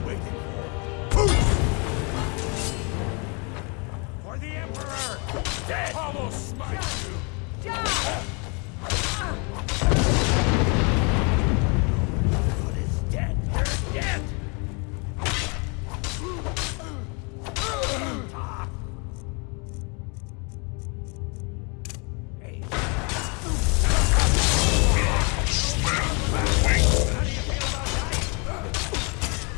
waiting for? For the Emperor! Dead! Almost smite you! God is dead! You're dead!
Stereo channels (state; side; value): quieter; right; 33.1 dB